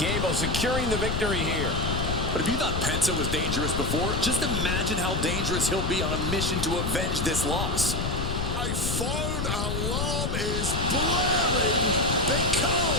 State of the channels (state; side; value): noise; left; rumble, 1 dB below the sound